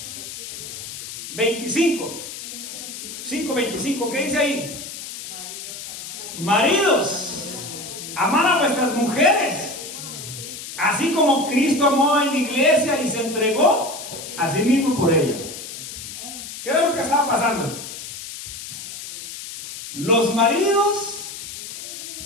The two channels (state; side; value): noise; left; hiss, 10 dB below the sound